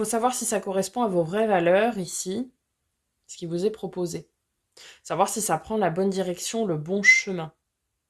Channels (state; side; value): identical; both; correlation 1.00